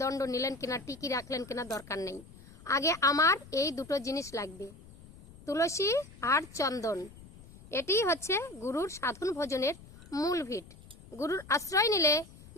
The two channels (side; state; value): left; noise; rumble, 20 dB below the sound